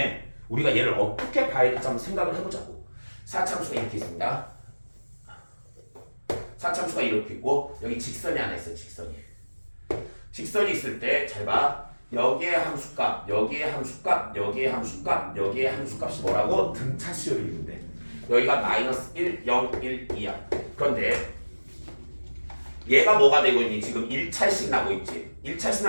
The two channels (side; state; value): both; inverted; correlation -1.00